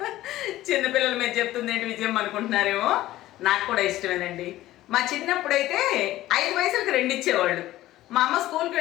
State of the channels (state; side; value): quieter; right; 15.4 dB